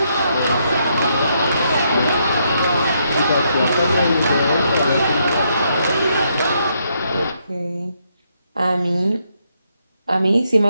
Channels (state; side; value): inverted; both; correlation -0.76